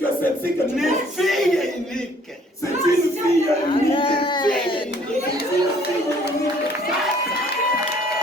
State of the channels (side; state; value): both; normal; correlation 0.59